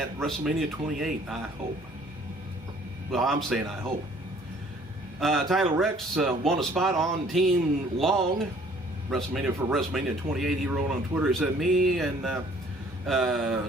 WrestleMania 28, I hope. Well, I'm saying I hope. Tyler Rex won a spot on Team Long, WrestleMania for WrestleMania 28. He wrote on Twitter, he said, me and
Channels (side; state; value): both; normal; correlation 0.57